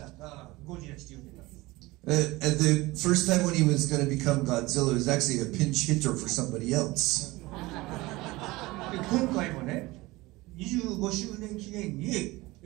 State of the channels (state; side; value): quieter; left; 20.7 dB